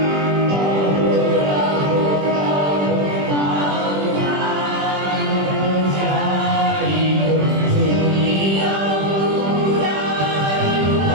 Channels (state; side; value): late; left; 20 ms